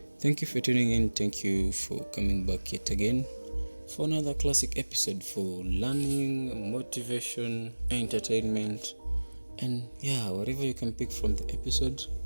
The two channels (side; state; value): both; inverted; correlation -1.00